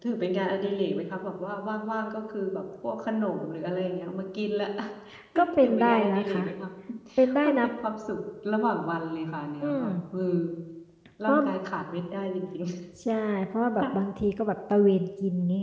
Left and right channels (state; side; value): identical; both; correlation 1.00